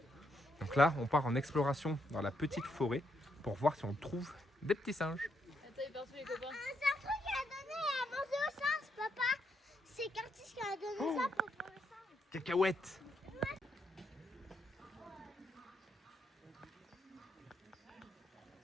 Donc là, on part en exploration dans la petite forêt pour voir si on trouve des petits singes. Attends, il part tous les copains. un truc qu'il a donné à manger aux singes, papa. C'est Curtis qui a donné ça pour les singes. Cacahuètes.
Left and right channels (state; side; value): normal; both; correlation 0.78